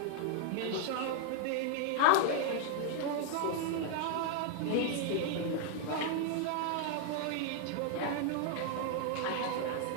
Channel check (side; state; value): both; different; correlation 0.00